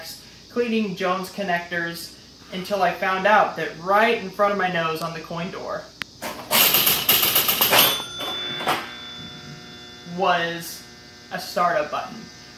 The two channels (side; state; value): both; identical; correlation 1.00